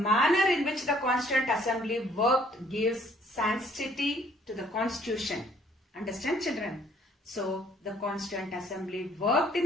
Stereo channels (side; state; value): both; normal; correlation 0.62